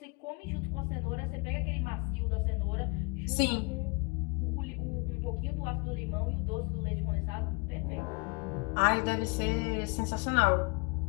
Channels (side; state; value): right; quieter; 30.5 dB